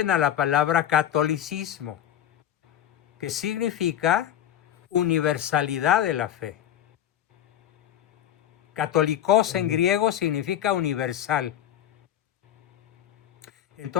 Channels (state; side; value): quieter; right; 11.2 dB